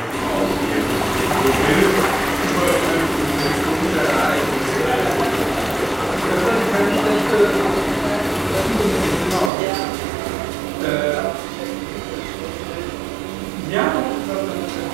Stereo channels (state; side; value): drops out; left; at 9.5 s